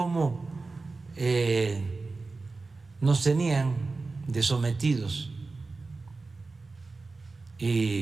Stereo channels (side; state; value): left; quieter; 3.8 dB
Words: nos tenían de sometidos